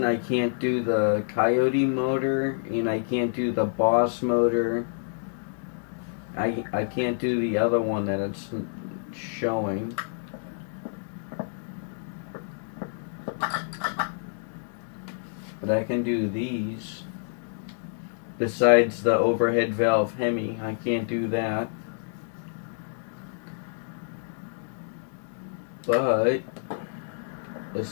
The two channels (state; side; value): silent; right; digital silence